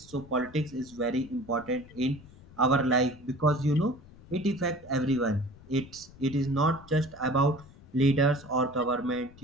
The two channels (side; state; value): left; noise; rumble, 22 dB below the sound